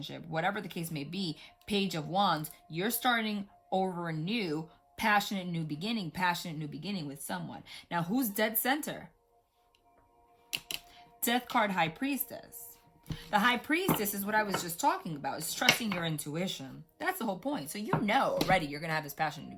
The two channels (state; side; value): identical; both; correlation 1.00